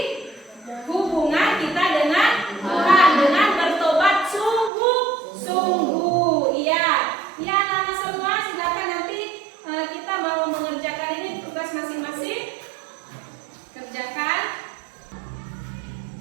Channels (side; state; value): left; drops out; at 4.7 s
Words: hubungan kita dengan Tuhan dengan bertobat sungguh-sungguh. Iya. Ya, anak-anak semua silakan nanti kita mau mengerjakan ini tugas masing-masing. Kerjakan.